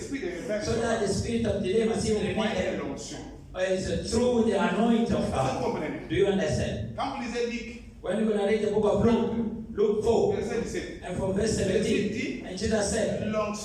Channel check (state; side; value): identical; both; correlation 1.00